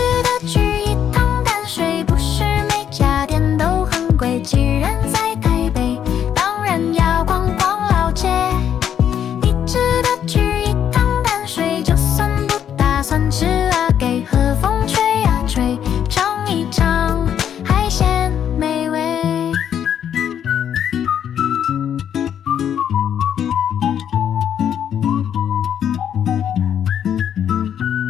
得去一趟淡水，不是每家店都很贵。既然在台北，当然要逛逛老街。你值得去一趟淡水，就算不打算吃啊，给和风吹啊吹，尝一尝海鲜美味。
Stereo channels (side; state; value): right; quieter; 9.2 dB